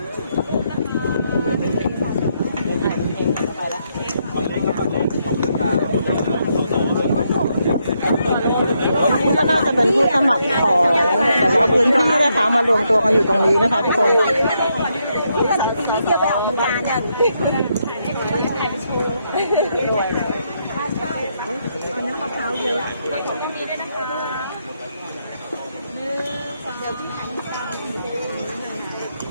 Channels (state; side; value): inverted; both; correlation -0.78